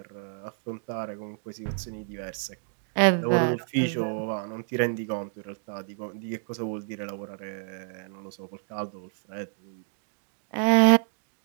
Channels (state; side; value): silent; left; digital silence